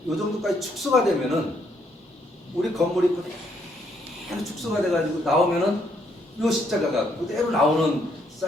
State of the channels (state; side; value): normal; both; correlation 0.72